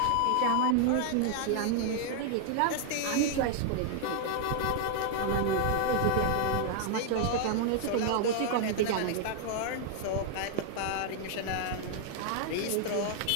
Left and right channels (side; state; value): both; different; correlation 0.00